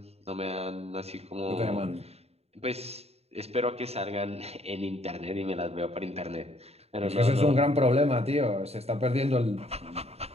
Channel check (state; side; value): late; left; 0.30 ms